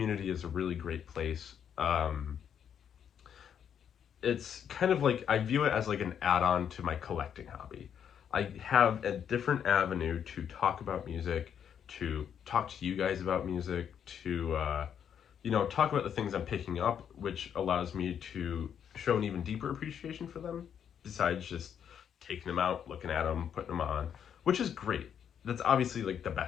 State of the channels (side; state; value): right; quieter; 8.5 dB